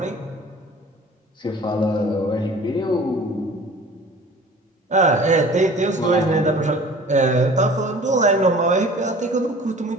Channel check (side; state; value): both; normal; correlation 0.46